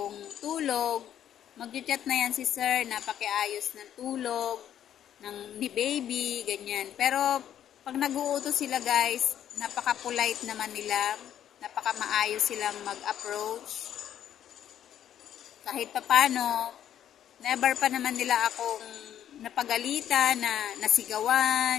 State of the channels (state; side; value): quieter; right; 10.4 dB